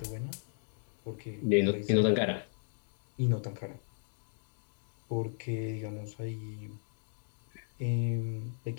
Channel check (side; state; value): right; silent; digital silence